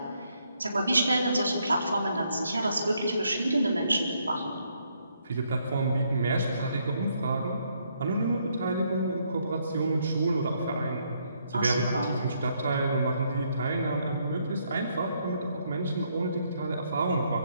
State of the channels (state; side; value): inverted; both; correlation -0.73